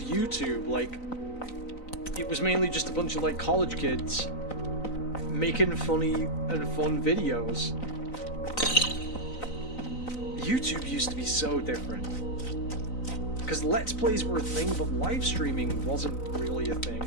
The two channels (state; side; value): late; right; 3.9 ms